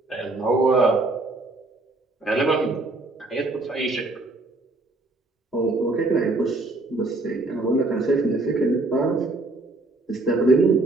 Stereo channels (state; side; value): quieter; left; 3.0 dB